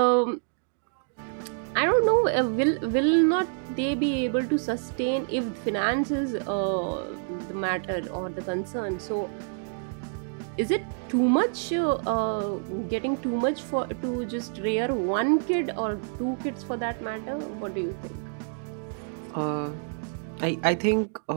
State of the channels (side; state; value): left; silent; digital silence